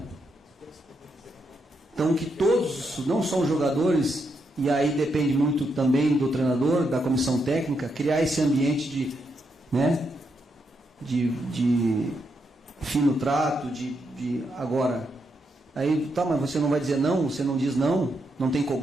Então que todos, não só os jogadores, e aí depende muito também do treinador, da comissão técnica, criar esse ambiente de fino trato, agora, aí, tá, mas você não vai dizer não, você não diz não, não tem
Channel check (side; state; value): both; normal; correlation 0.81